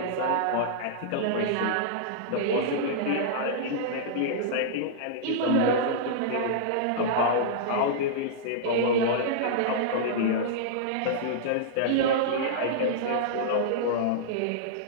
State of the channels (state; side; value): different; both; correlation -0.02